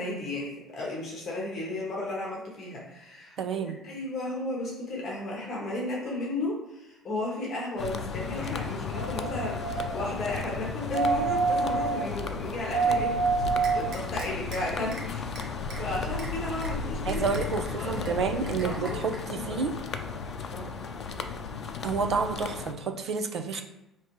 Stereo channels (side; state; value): both; normal; correlation 0.43